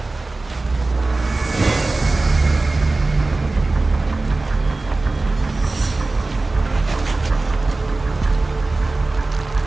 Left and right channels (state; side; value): quieter; left; 3.3 dB